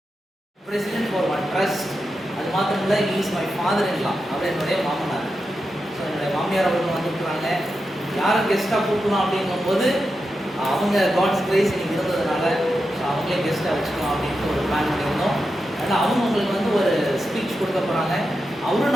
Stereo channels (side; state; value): both; normal; correlation 0.89